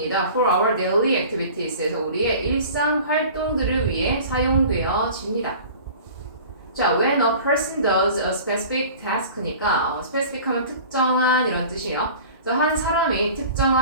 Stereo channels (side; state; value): both; inverted; correlation -0.43